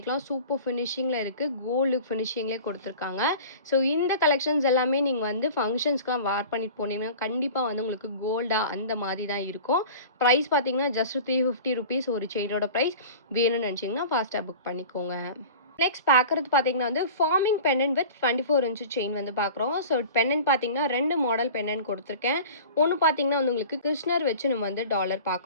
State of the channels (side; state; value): both; inverted; correlation -0.39